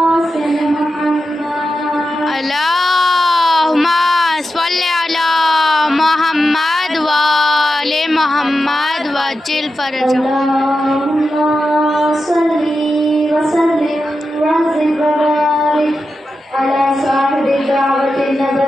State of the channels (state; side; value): normal; both; correlation 0.90